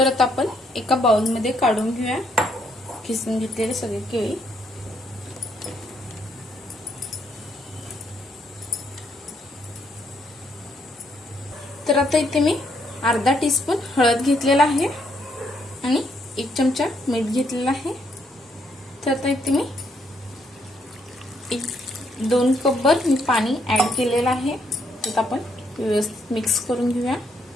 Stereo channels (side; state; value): both; normal; correlation 0.73